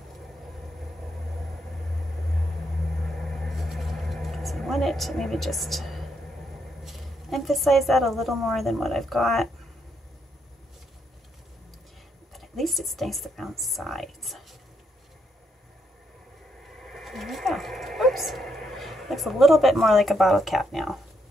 Because I want it to maybe just emphasize that a little more than what I've got. But at least it's nice around sides. There we go. Oops. Looks a little bit more like a bottle cap now.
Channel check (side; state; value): both; normal; correlation 0.77